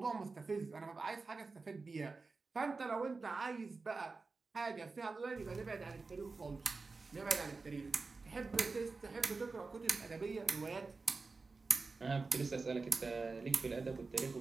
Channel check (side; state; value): left; quieter; 4.0 dB